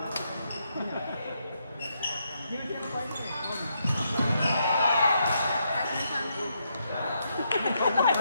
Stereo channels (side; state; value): both; inverted; correlation -0.79